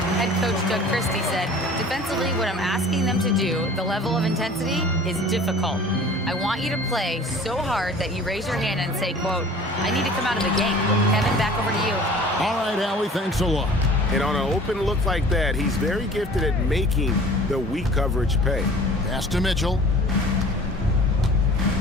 Head coach Doug Christie said, defensively, what I'm asking them to do, the level of intensity, is difficult. I want you to play so hard that you raise your hand and say, quote, I need to come out of the game. Kevin, back over to you. All right, Allie, thanks a lot. And on an open look like that, he's very gifted at making the weak coverage pay. Pass to Mitchell.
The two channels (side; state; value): both; normal; correlation 0.46